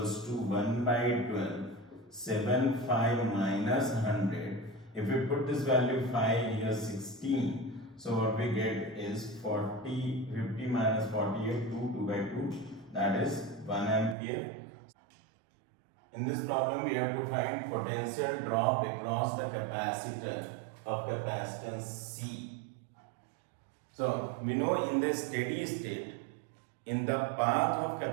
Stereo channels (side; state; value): left; drops out; at 14.2 s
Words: to 1 by 12 7 5 minus 100. If we put this value 5 here 16, so what we get is 50 minus 48 2 by 2, that is 1 ampere. In this problem we have to find potential drop across the capacitor of capacitance C. So we know in the steady state, in the path of